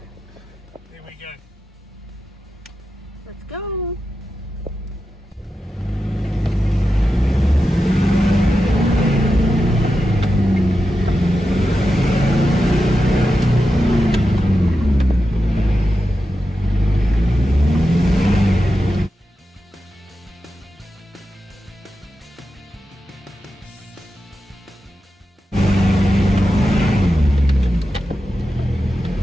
we go. Let's go.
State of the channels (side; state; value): both; normal; correlation 0.90